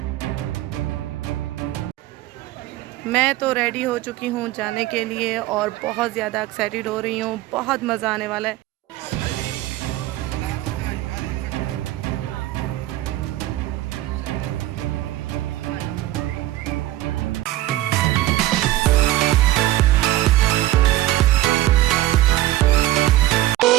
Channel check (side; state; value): left; quieter; 15.4 dB